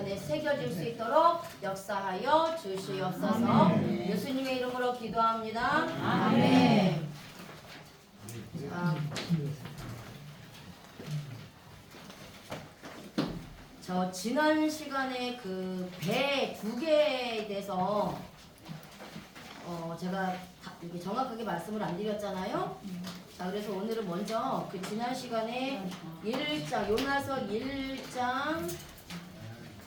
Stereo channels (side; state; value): both; identical; correlation 1.00